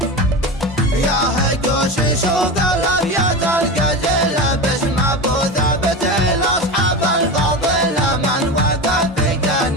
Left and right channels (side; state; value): both; normal; correlation 0.24